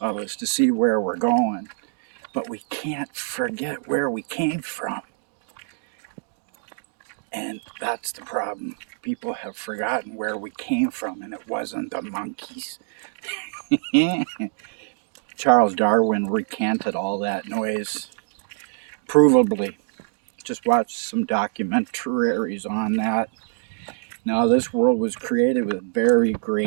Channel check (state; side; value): silent; left; digital silence